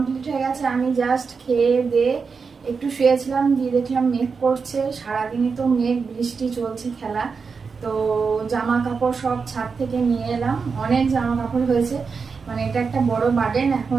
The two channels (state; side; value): quieter; left; 5.2 dB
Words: হয়ে গেছে। আমি জাস্ট খেয়ে দিয়ে একটু শুয়েছিলাম, দিয়ে দেখলাম মেঘ করছে। সারাদিনই তো মেঘ, বৃষ্টি চলছে খেলা। তো জামা কাপড় সব ছাদ থেকে নিয়ে এলাম। অনেক জামা কাপড় হয়েছে, মানে এটা একটা বড় বার্ডেন।